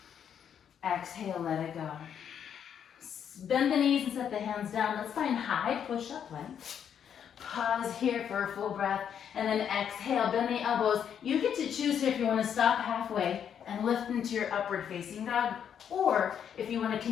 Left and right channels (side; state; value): right; quieter; 8.5 dB